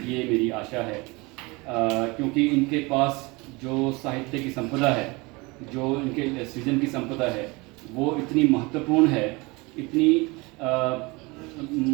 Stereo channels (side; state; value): left; quieter; 25.2 dB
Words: ये मेरी आशा है, क्योंकि इनके पास जो साहित्य की संपदा है, जो इनके सृजन की संपदा है, वो इतनी महत्वपूर्ण है, इतनी